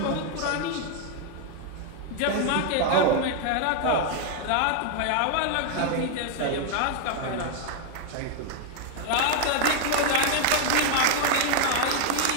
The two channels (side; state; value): both; different; correlation 0.00